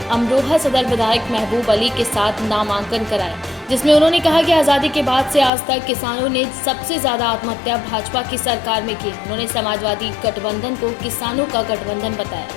अमरोहा सदर विधायक महबूब अली के साथ नामांकन कराया, जिसमें उन्होंने कहा कि आज़ादी के बाद से आज तक किसानों ने सबसे ज्यादा आत्महत्या भाजपा की सरकार में की। उन्होंने समाजवादी गठबंधन को किसानों का गठबंधन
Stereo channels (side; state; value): right; drops out; at 5.5 s